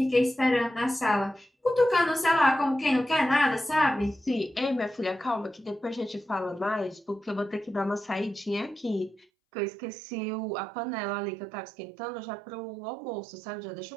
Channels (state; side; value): drops out; left; at 9.2 s